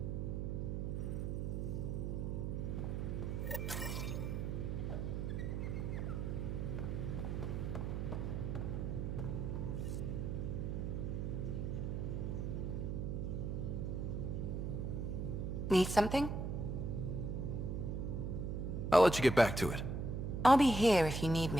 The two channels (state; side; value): noise; right; hum, 2 dB below the sound